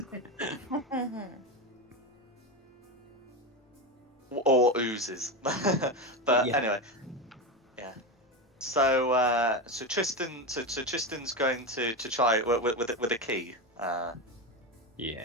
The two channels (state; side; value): normal; both; correlation 0.16